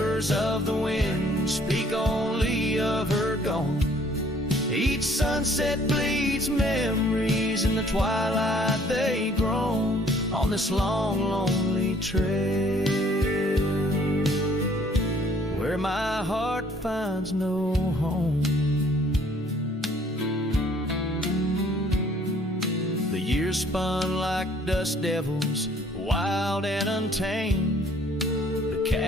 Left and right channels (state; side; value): normal; both; correlation 0.59